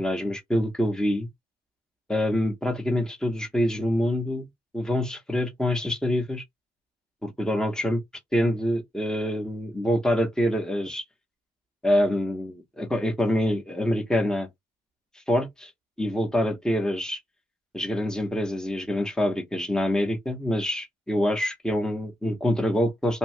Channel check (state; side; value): normal; both; correlation 0.86